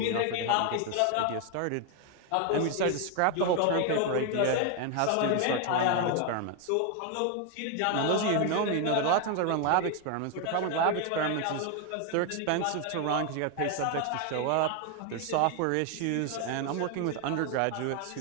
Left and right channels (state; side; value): different; both; correlation 0.01